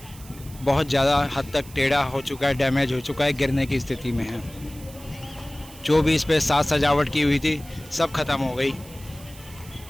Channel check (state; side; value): noise; right; hiss, 20 dB below the sound